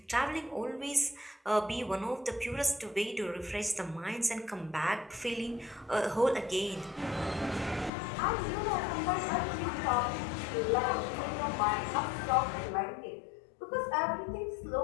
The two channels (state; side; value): drops out; right; at 7.9 s